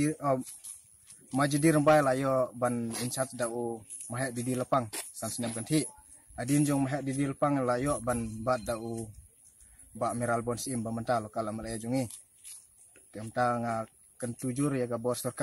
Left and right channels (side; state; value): both; identical; correlation 1.00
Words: majidi rombai layo ban inchat da u mahek didi lepang sansnem kanthi adin jong mahek didi lepang layo ban bat da u ba miral bon sim ba menta lokal MLA jungi kemta nga kentujur ya ga bor